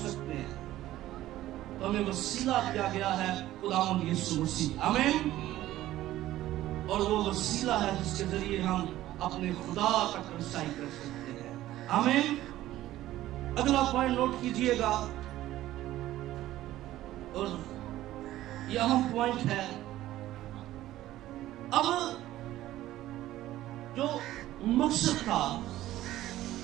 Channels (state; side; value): quieter; left; 14.7 dB